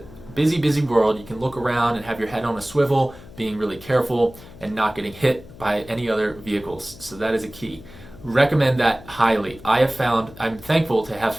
busy world, you can look around and have your head on a swivel, being really careful and not getting hit by any other vehicles. So that is a key. Recommend that highly. I'm thankful to have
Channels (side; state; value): left; noise; hum, 19 dB below the sound